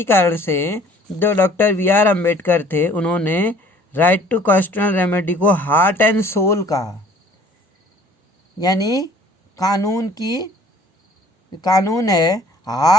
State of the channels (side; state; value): both; normal; correlation 0.54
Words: कारण से जो डॉक्टर BR अम्बेडकर थे, उन्होंने राइट टू कॉन्स्टिट्यूशनल रेमेडी को हार्ट एंड सोल कहा। यानी कानून है,